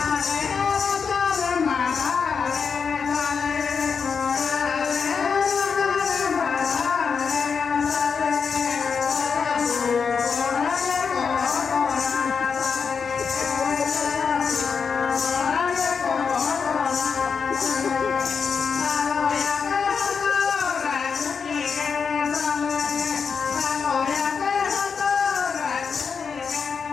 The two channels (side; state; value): right; quieter; 5.9 dB